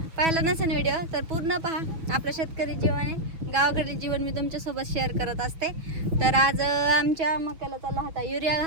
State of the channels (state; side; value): late; left; 6.1 ms